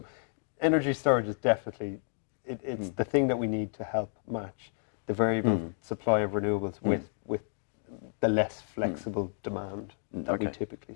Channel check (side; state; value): right; silent; 57 dB below the other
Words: energy storage is definitely, it's the thing that we need to help match the variable supply of renewables with the less flexible demand that we typically